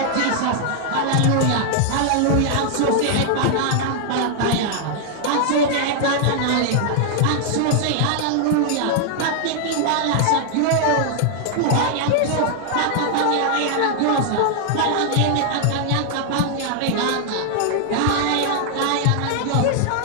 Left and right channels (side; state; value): both; different; correlation 0.00